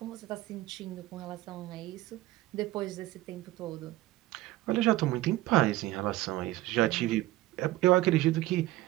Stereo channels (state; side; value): quieter; left; 17.1 dB